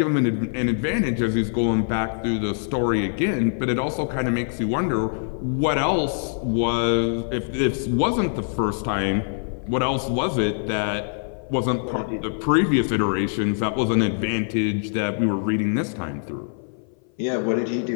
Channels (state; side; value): silent; right; 58 dB below the other